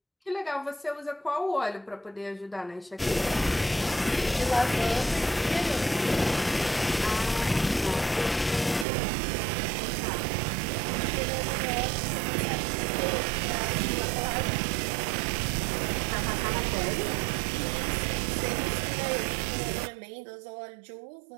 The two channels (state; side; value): drops out; left; at 8.8 s